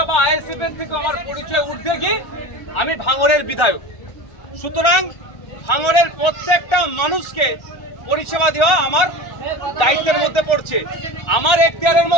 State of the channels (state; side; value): late; right; 1.3 ms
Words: বা আইএসএফ এর থেকে আমার পরিচয় ঊর্ধ্বে গিয়ে আমি ভাঙড়ের বিধায়ক। সুতরাং ভাঙড়ের প্রত্যেকটা মানুষকে পরিষেবা দেওয়া আমার দায়িত্বের মধ্যে পড়ছে। আমার এখতিয়ারের